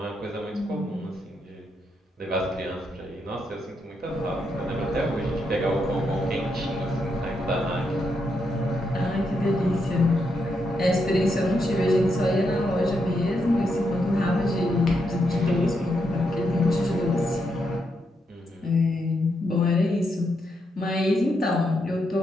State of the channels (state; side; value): normal; both; correlation 0.81